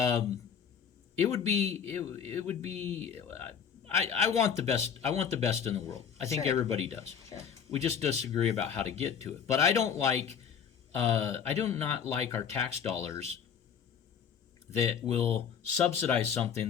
It would be. I want the best. I want the best in the world. I think everybody does. Sure. We just disagree about how to get to it. But I don't like. I do not like our tax dollars that will subsidize something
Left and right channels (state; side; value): quieter; right; 7.5 dB